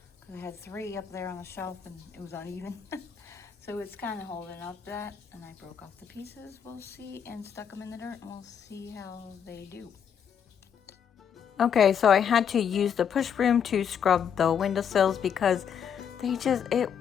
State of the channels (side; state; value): right; quieter; 7.9 dB